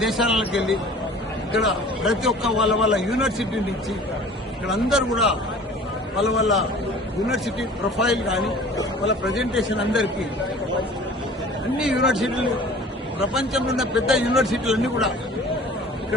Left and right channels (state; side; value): normal; both; correlation 0.46